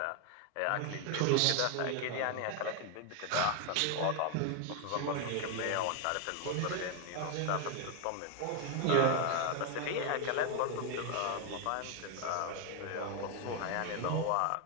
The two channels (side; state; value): both; different; correlation 0.01